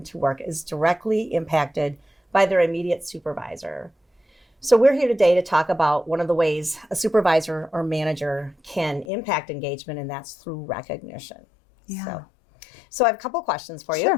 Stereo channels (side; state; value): right; drops out; at 9.1 s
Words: to work, is directly impacted by their immediate supervisor. So we're here today to talk about one of the ways a supervisor or manager can impact engagement, and that's through recognition. Yeah. So I have a couple questions for you.